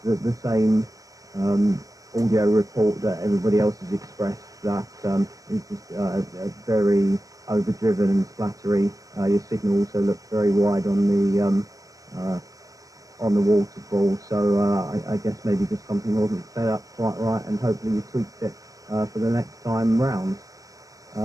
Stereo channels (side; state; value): left; late; 0.17 ms